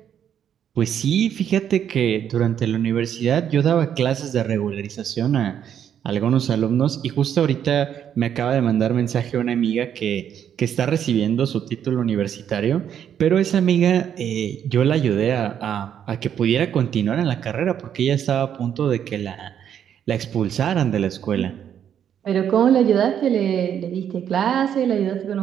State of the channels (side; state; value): left; quieter; 9.1 dB